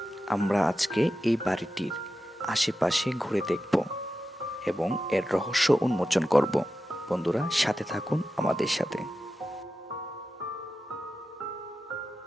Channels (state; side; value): normal; both; correlation 0.91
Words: আমরা আজকে এই বাড়িটির আশেপাশে ঘুরে দেখব এবং এর রহস্য উন্মোচন করব। বন্ধুরা, সাথে থাকুন আমাদের সাথে।